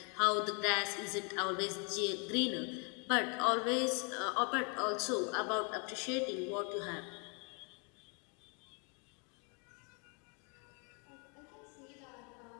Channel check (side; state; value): right; quieter; 36.0 dB